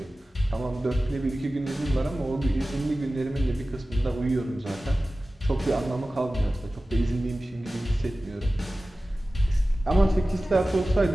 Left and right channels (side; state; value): both; normal; correlation 0.96